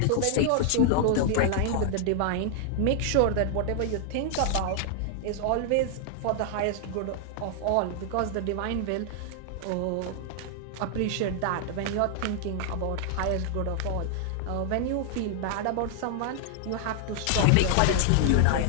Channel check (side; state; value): both; different; correlation 0.00